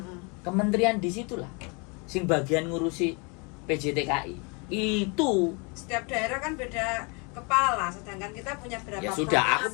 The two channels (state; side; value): quieter; right; 32.1 dB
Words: Kementerian di situlah. Sing bagian ngurusi PJTKI. Itu setiap daerah kan beda kepala, sedangkan kita punya berapa ya sudah, aku